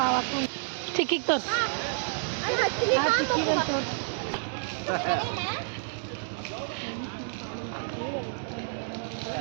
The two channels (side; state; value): left; silent; digital silence